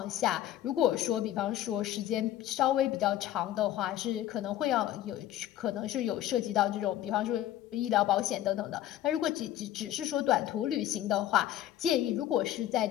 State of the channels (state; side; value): quieter; right; 12.8 dB